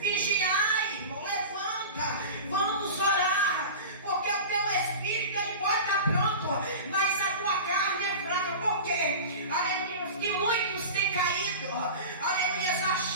irmão, levanta, vamos orar, porque o teu espírito ele pode estar pronto, mas a tua carne é fraca. Por quê? Aleluia, que muitos têm caído, aleluia,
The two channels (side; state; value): both; inverted; correlation -0.32